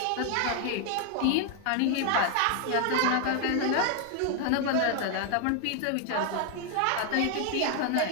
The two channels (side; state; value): both; different; correlation 0.00